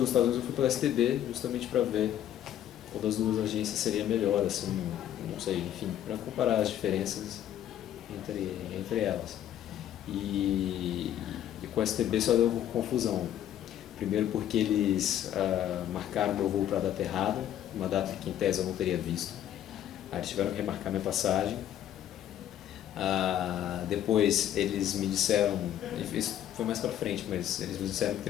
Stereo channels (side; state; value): right; quieter; 11.2 dB